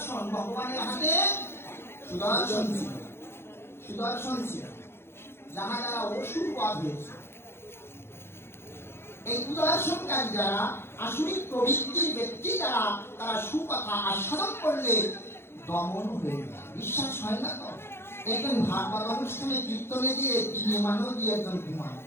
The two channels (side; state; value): right; late; 0.12 ms